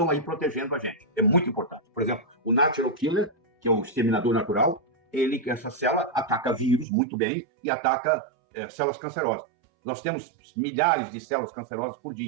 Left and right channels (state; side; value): drops out; left; at 6.9 s